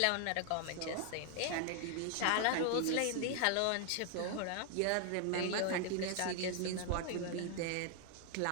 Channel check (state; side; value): different; both; correlation 0.00